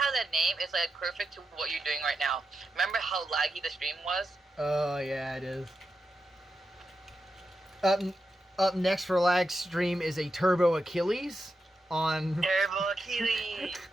the name is like perfect to what you're doing right now. Remember how laggy the stream was? Oh yeah, it is. Up next for lag stream is a Turbo Achilles on. Turbo Achilles.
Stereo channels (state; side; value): normal; both; correlation 0.88